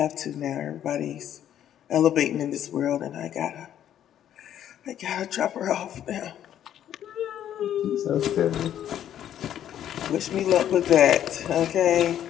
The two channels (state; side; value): quieter; right; 10.7 dB